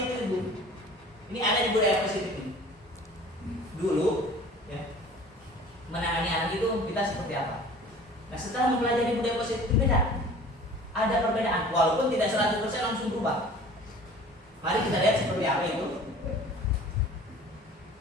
itu Ibu. Ini ada di budaya positif ini. Dulu ya, menangani anak itu kita seperti apa. Nah setelah mempelajari budaya positif itu beda, ada perbedaan walaupun tidak 100% langsung berubah. Mari kita lihat seperti apa itu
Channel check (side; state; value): both; normal; correlation 0.46